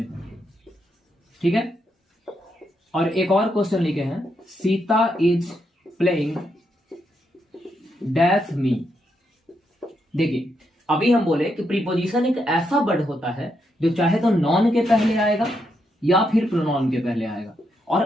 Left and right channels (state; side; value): normal; both; correlation 0.80